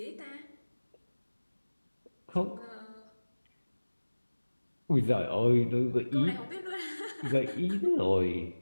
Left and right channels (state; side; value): inverted; both; correlation -1.00